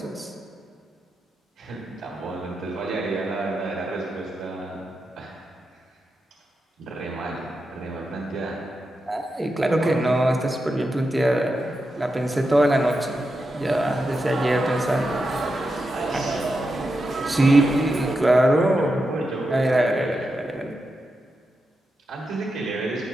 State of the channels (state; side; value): normal; both; correlation 0.88